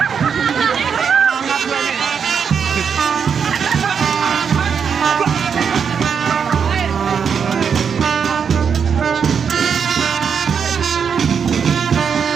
Semangat gue nih.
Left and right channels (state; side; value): quieter; left; 6.8 dB